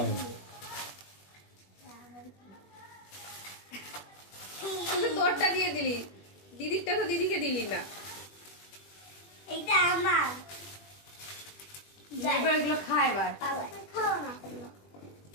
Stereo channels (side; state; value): right; late; 20 ms